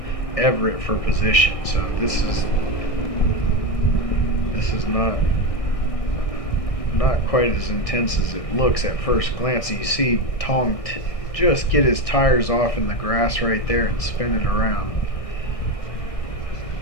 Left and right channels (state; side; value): late; right; 1.6 ms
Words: Everett for position. So this is not quite as intense as it looks at first glance. You see Tong just get his tires off in the grass right there and spin it around.